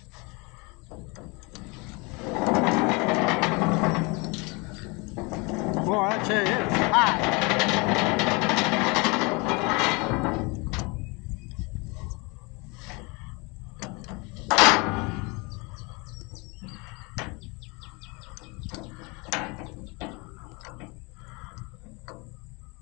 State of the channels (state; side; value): quieter; right; 28.2 dB